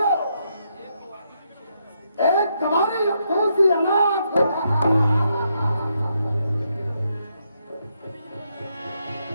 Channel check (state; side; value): inverted; both; correlation -0.78